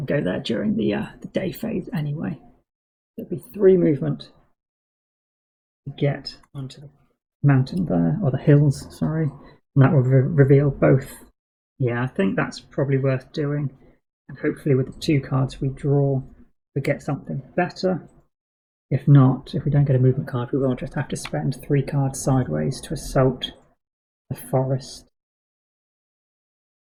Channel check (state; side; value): identical; both; correlation 1.00